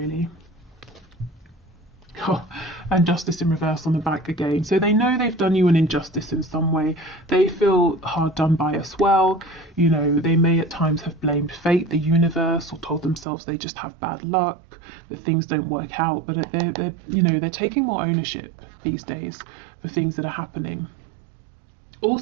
Oh, and Justice in reverse on the back again. So they know they've done you an injustice in some way. They feel hard done by as well. You know, they may at times have blamed fate, the universe, or told themselves they just have bad luck, that things don't work out. But they're you know, they're taking more ownership these days for things that are happening.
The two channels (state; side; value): drops out; left; at 13.2 s